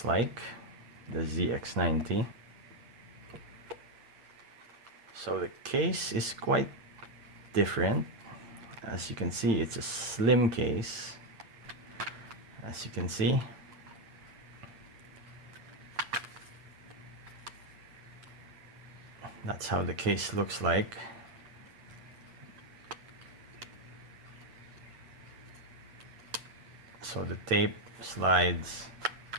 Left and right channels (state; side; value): late; left; 8.7 ms